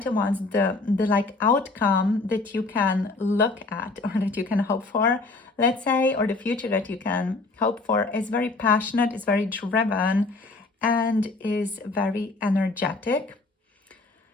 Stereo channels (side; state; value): right; quieter; 3.5 dB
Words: of Wands, the like outcome that you can look at or that you can hope for, let's say, or the future that you can hope for is very passionate, is very driven, and is very energetic.